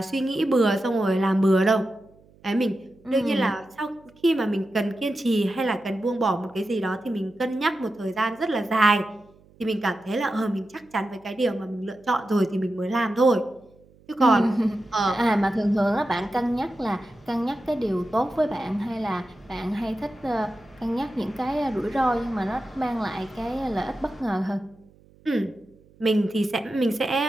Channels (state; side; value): noise; right; hum, 28 dB below the sound